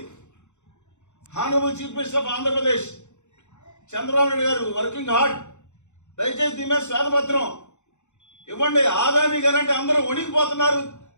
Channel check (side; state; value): right; late; 0.83 ms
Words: Honourable chief minister of Andhra Pradesh Chandrababu Naidu గారు వర్కింగ్ హార్డ్. దయచేసి దీని మీద శ్వేతపత్రం ఇవ్వండి. ఆదానీ గారు అంటే అందరూ వణికిపోతున్నారు.